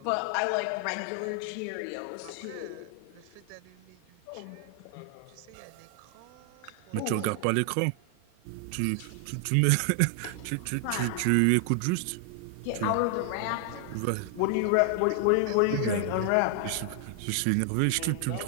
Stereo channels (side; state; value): both; different; correlation 0.00